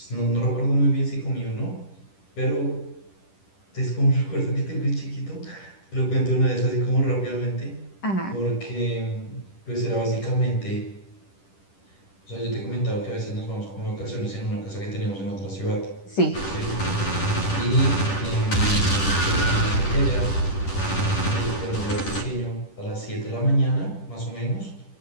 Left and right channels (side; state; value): right; late; 10 ms